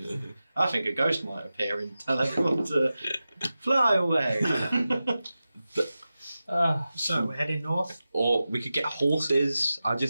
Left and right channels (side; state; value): both; inverted; correlation -0.94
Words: I think a ghost might appear and tell everyone to fly away. So we're heading north. Or we could get horses. I